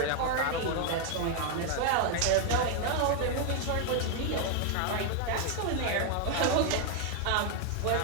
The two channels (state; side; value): different; both; correlation 0.00